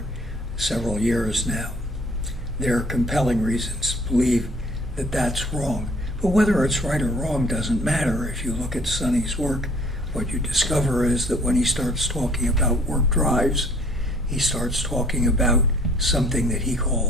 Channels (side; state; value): both; normal; correlation 0.57